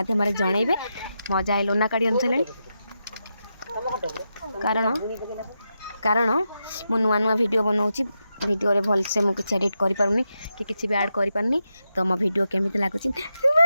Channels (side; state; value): both; inverted; correlation -0.87